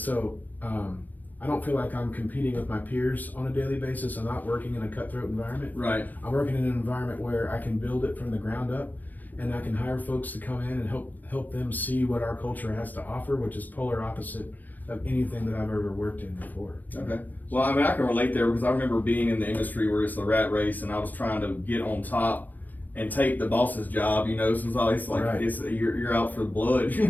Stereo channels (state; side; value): late; right; 0.083 ms